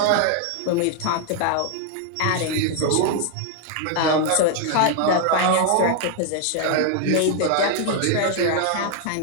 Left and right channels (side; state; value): both; different; correlation 0.00